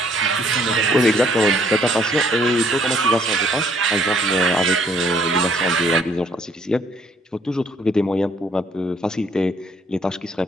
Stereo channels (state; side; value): normal; both; correlation 0.64